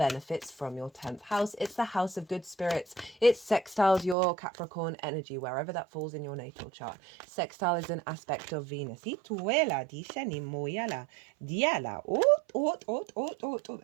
from your 10th house. It's the house of good spirits. It sextiles your Capricorn energy, wherever that falls in your natal chart. Sextile is an aspect of Venus.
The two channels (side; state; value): left; drops out; at 4.2 s